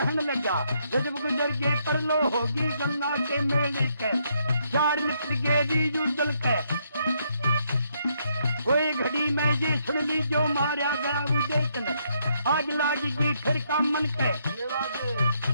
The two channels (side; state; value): both; inverted; correlation -0.74